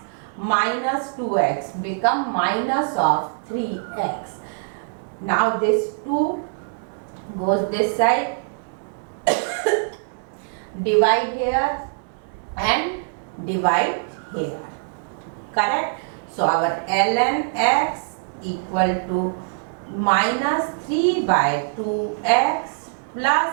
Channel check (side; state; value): left; silent; digital silence